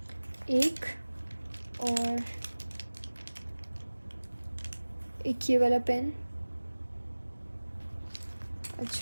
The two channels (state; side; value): inverted; both; correlation -1.00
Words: एक, और एक ये वाला पेन।